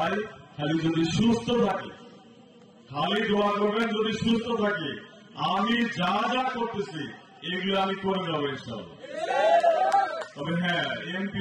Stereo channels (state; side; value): identical; both; correlation 1.00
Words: খালি যদি সুস্থ থাকি, খালি দোয়া করবেন যদি সুস্থ থাকি, আমি যা যা করতেছি এগুলো আমি করে যাবো ইনশাআল্লাহ। তবে হ্যাঁ, এমপি